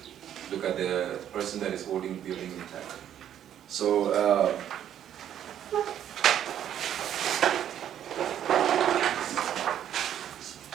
look at the person that is holding the building intact. So,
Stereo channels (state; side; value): quieter; left; 10.3 dB